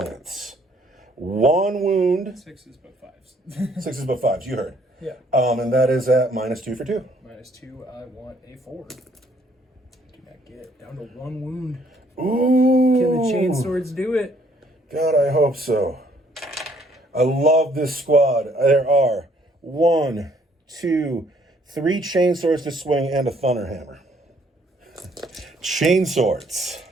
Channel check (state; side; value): normal; both; correlation 0.64